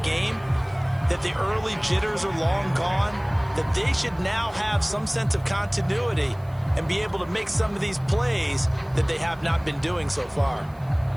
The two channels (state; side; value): noise; right; hiss, 30 dB below the sound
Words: game that the early jitters are long gone, that they should now have some sense of continuity and be able to make some of these plays that they have not been doing so far.